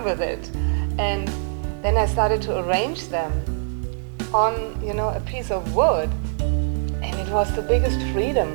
with it. And then I started to arrange them on, a piece of wood. And it was the biggest freedom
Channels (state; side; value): silent; left; 63 dB below the other